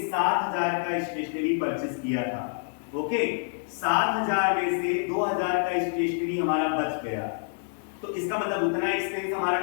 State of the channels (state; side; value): silent; right; digital silence